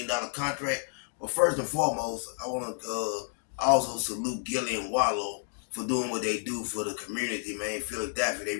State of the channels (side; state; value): right; silent; digital silence